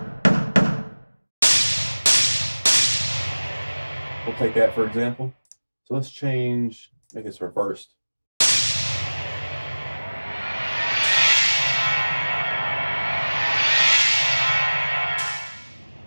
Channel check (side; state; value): both; inverted; correlation -1.00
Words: We'll take that for example. So let's make this reversed.